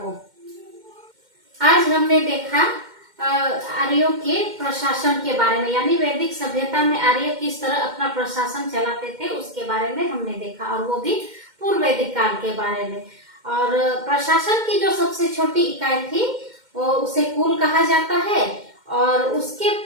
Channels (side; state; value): left; late; 2.1 ms